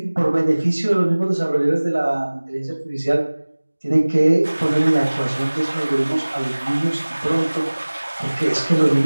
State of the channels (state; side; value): inverted; both; correlation -1.00